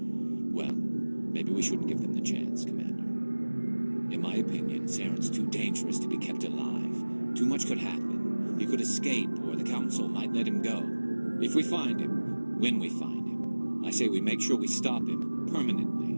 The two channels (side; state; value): both; inverted; correlation -1.00